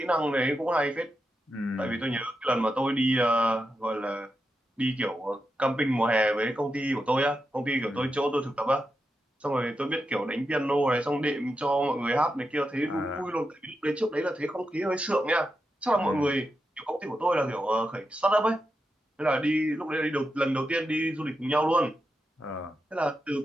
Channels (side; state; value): both; normal; correlation 0.87